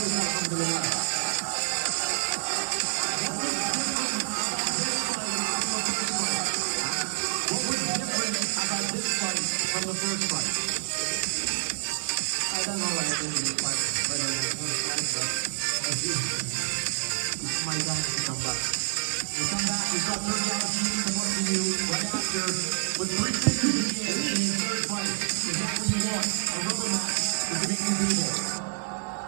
From the first fight. I don't know what I think this fight better than the first fight, but it's my time to come back. We come back, we've got third galaxy coming to you right after with 3 figures in the end in his third fight. Is that what you want? A rubber match with the big people.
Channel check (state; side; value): silent; left; digital silence